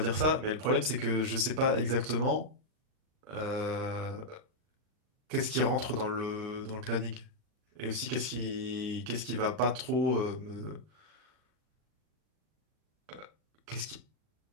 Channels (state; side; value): late; left; 39 ms